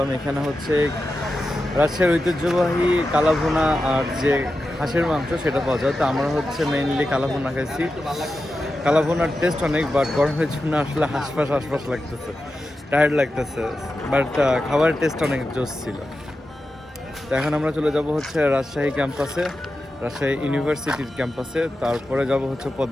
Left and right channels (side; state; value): both; normal; correlation 0.91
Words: এখানে হচ্ছে রাজশাহীর ঐতিহ্যবাহী কালাভুনা আর যে হাঁসের মাংস সেটা পাওয়া যায়। তো আমরা হচ্ছে মেইনলি কালাভুনা খাইছি। কালাভুনার টেস্ট অনেক, বাট গরমের জন্য আসলে হাঁসফাঁস লাগতেছে, টায়ার্ড লাগতেছে, বাট খাবারের টেস্ট অনেক জোস ছিল। তো এখন আমরা চলে যাব হচ্ছে রাজশাহী ক্যাম্পাসে, রাজশাহী ইউনিভার্সিটির ক্যাম্পাসে, তারপরে যাব হচ্ছে